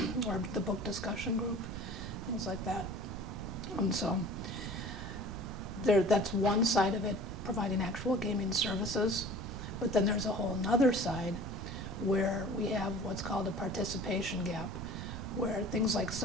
or the book discussion group, things like that. And so that's one side of it, providing actual gaming services. But then there's a whole other side where we have what's called a participation gap, where things like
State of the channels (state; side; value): noise; right; rumble, 7 dB below the sound